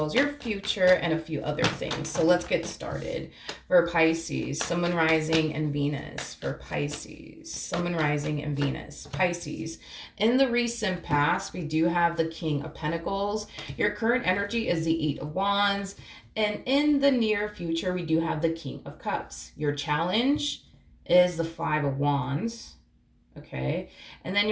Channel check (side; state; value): both; identical; correlation 1.00